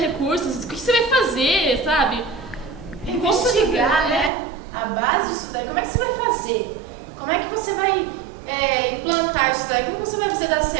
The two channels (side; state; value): left; drops out; at 4.3 s